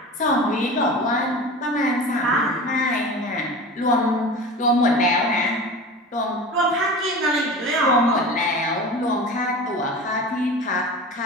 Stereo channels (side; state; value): both; normal; correlation 0.34